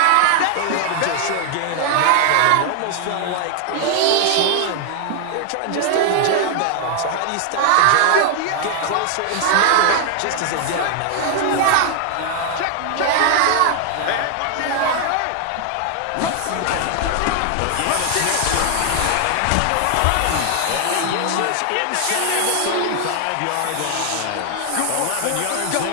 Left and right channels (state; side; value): different; both; correlation 0.00